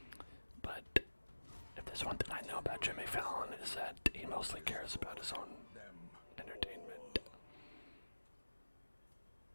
But if there's one thing I know about Jimmy Fallon is that he mostly cares about his own entertainment.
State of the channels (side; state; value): both; inverted; correlation -1.00